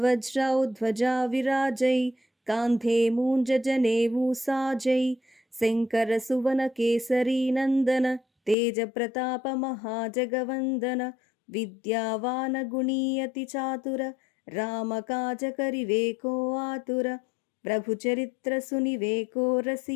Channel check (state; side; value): drops out; right; at 8.6 s